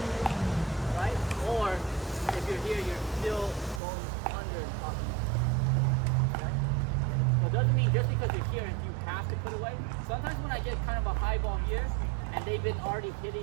right? Or if you're here, you're still going under and up. Okay? So it doesn't mean just because you're here you have to put away. Sometimes when I get kind of a high ball here and they've been already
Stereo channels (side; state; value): left; drops out; at 3.8 s